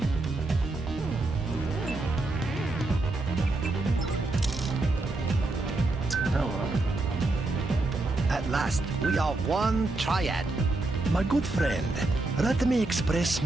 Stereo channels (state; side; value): quieter; left; 3.0 dB